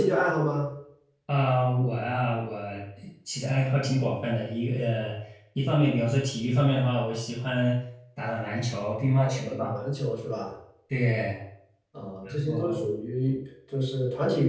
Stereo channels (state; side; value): identical; both; correlation 1.00